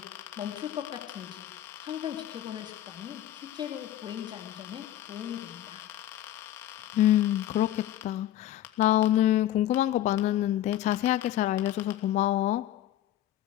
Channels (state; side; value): quieter; right; 12.8 dB